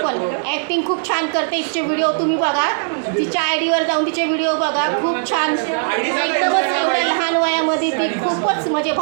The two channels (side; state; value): left; silent; 67 dB below the other